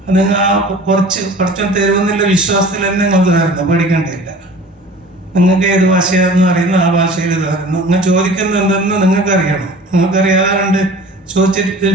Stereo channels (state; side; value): normal; both; correlation 0.43